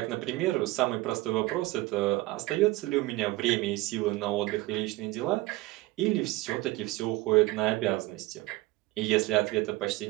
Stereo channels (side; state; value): left; quieter; 19.6 dB